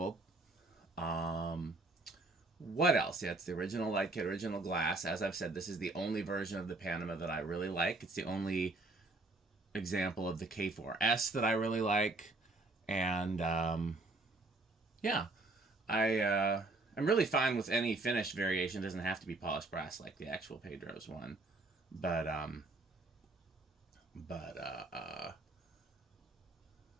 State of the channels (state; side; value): quieter; left; 3.1 dB